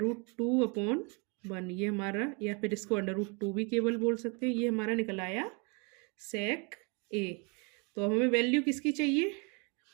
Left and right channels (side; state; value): left; quieter; 32.8 dB